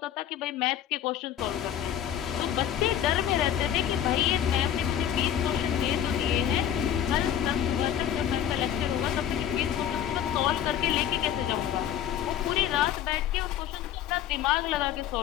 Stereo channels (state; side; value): quieter; right; 10.3 dB